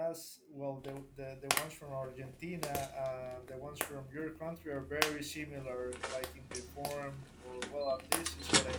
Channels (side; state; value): both; identical; correlation 1.00